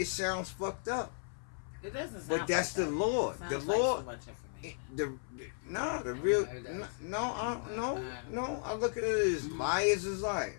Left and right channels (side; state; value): right; silent; 54 dB below the other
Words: sounds fucked up. It doesn't sound but that's the law. The law. Like No. I look at it as liars is